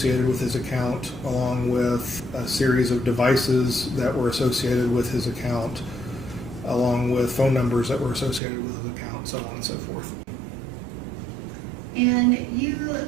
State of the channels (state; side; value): drops out; left; at 8.4 s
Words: with his account, along with a series of devices that were associated with his account, along with phone numbers that were associated with his account, so on and so forth. And you